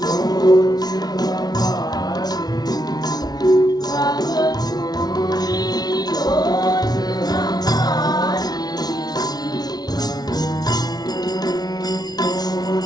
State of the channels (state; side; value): late; right; 0.19 ms